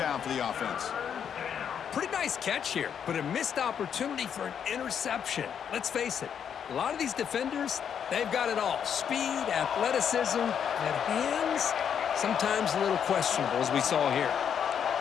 for the offense. Pretty nice catch here, but a missed opportunity for an interception. Let's face it, a lot of these defenders, they've got it all. Speed, athleticism, and hands, sometimes a little questionable, as we saw here.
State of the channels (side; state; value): right; quieter; 8.1 dB